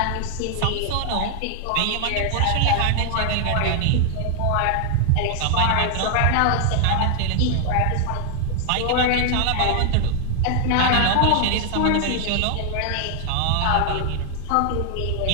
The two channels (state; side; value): different; both; correlation 0.00